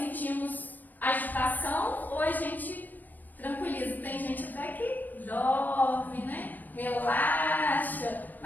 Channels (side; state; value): right; late; 0.088 ms